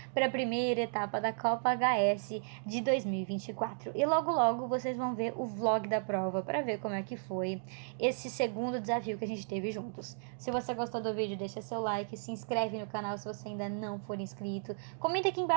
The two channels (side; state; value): left; silent; digital silence